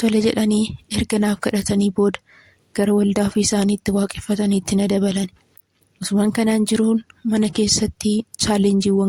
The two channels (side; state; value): both; identical; correlation 1.00